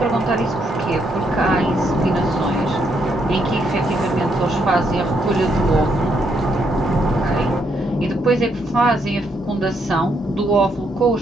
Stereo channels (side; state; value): both; normal; correlation 0.75